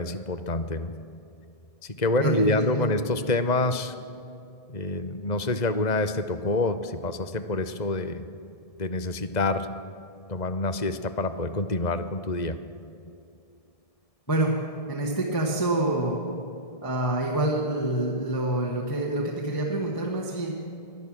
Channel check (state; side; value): late; right; 1.7 ms